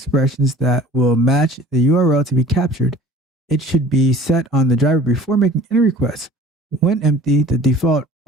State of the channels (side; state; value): both; normal; correlation 0.47